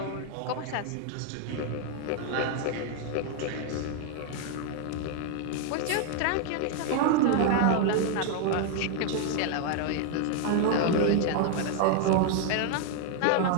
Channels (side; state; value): both; different; correlation 0.00